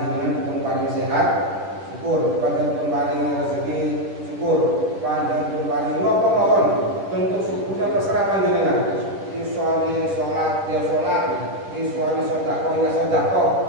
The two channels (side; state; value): left; late; 10 ms